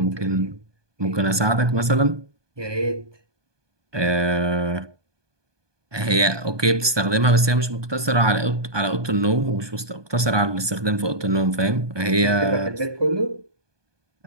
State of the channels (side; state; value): left; late; 1.2 ms